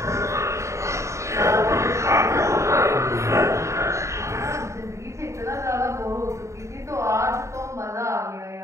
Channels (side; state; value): left; late; 0.14 ms